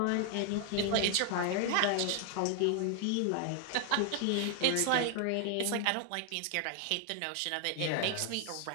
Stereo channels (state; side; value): different; both; correlation 0.00